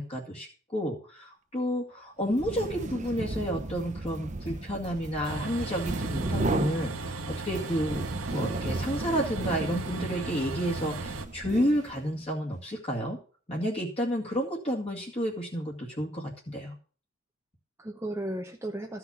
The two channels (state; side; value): normal; both; correlation 0.64